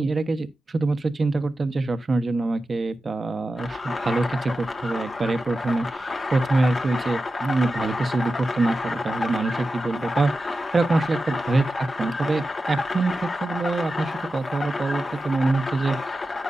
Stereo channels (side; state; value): both; normal; correlation 0.92